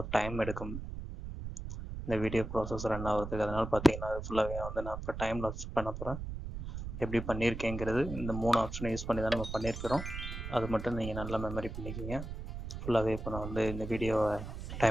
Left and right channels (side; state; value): right; noise; rumble, 7 dB below the sound